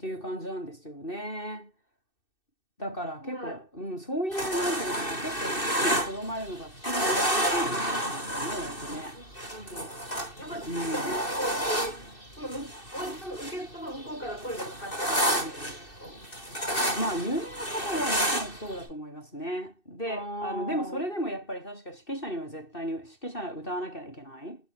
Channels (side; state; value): right; late; 2.6 ms